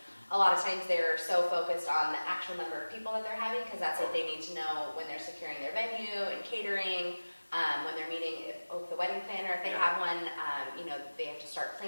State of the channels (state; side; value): inverted; both; correlation -1.00